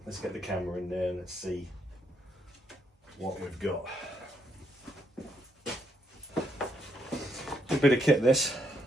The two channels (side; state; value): both; normal; correlation 0.75